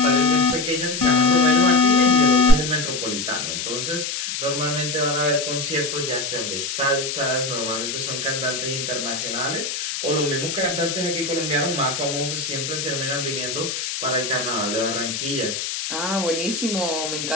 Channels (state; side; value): noise; left; hiss, 4 dB below the sound